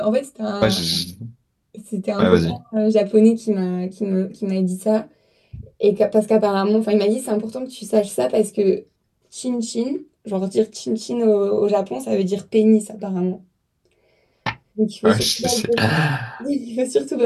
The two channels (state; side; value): identical; both; correlation 1.00